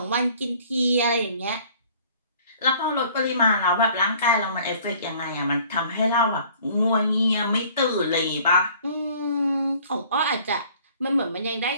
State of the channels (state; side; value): inverted; both; correlation -0.54